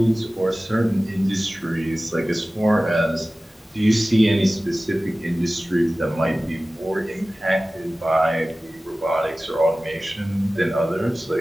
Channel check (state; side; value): normal; both; correlation 0.97